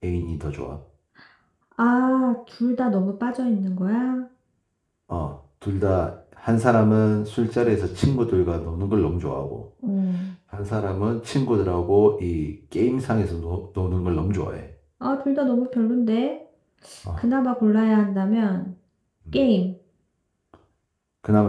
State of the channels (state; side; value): identical; both; correlation 1.00